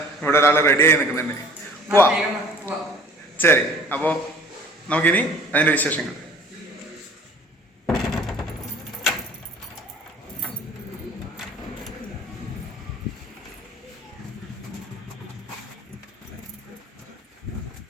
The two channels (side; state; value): both; normal; correlation 0.50